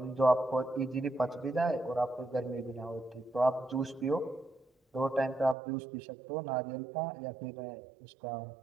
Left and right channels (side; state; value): left; drops out; at 5.6 s